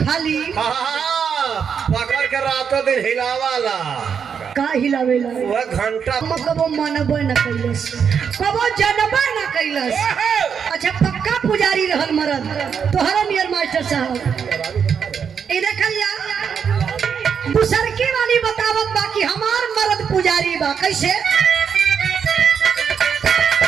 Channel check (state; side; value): quieter; left; 7.0 dB